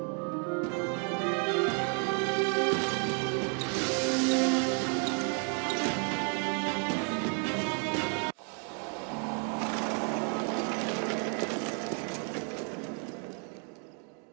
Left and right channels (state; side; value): quieter; left; 38.4 dB